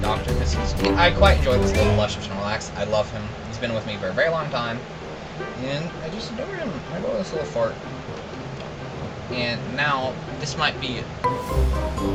Doctor, because I quite enjoy this little blush of Snorlax. I love him. He's been with me for a very long time. And I just adore him. I adore this little fart. And now, this might be,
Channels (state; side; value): identical; both; correlation 1.00